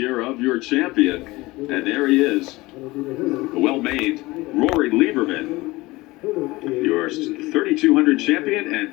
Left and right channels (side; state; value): right; quieter; 20.8 dB